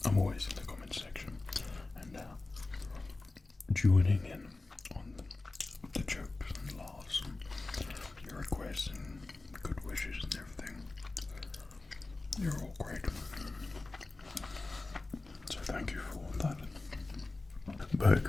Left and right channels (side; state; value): right; quieter; 3.3 dB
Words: I'm always in the comment section and joining in on the jokes and laughs and your requests and good wishes and everything. You're all great. So thank you for all that. Back